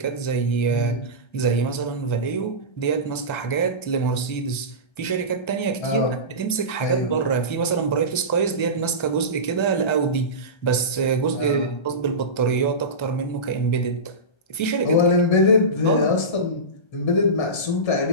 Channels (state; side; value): late; right; 1.3 ms